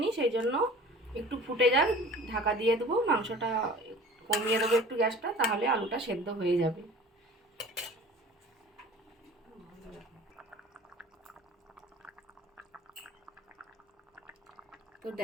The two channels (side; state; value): both; normal; correlation 0.43